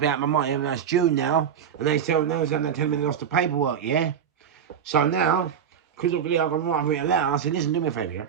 out my money, and that's June now, and they tell me they lost the paperwork, yeah. So now, because of the I've written a letter, I said, listen, do me a favour, yeah.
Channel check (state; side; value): quieter; left; 8.1 dB